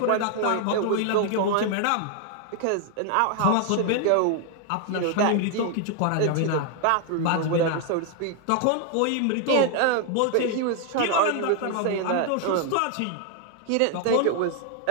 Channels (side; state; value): both; different; correlation 0.00